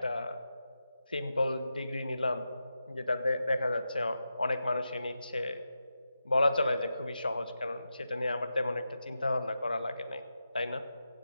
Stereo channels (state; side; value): inverted; both; correlation -0.89